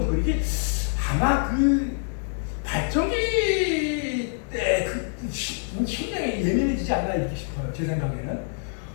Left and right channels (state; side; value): silent; right; 61 dB below the other